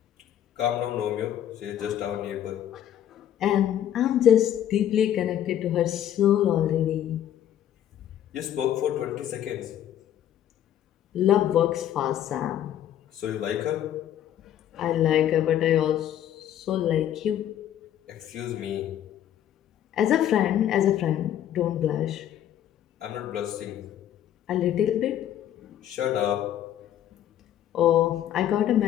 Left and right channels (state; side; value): quieter; right; 11.0 dB